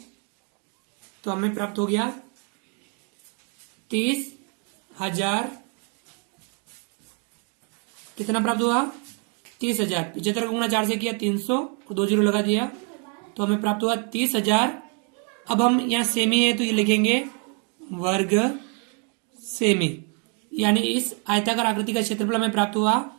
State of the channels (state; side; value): quieter; left; 38.1 dB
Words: तो हमें प्राप्त हो गया 30,000। कितना प्राप्त हुआ? 30,000। 75 को गुणा 4 से किया 300 और 2 जीरो लगा दिया तो हमें प्राप्त हुआ 30,000। अब हम यहाँ सेमी है तो ये लिखेंगे वर्ग सेमी, यानी इस आयताकार आकृति का क्षेत्रफल हमें प्राप्त हुआ